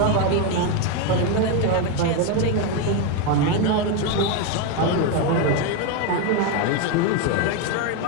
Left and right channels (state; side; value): different; both; correlation 0.02